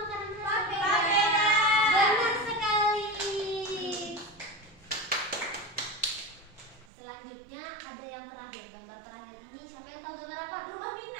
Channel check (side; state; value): left; drops out; at 6.9 s